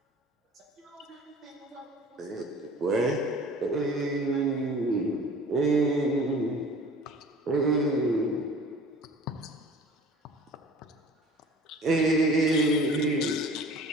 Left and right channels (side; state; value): both; normal; correlation 0.45